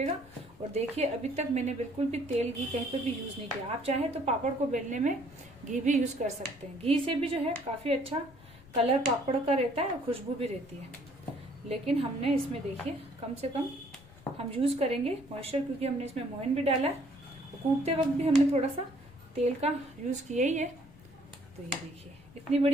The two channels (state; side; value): noise; left; rumble, 22 dB below the sound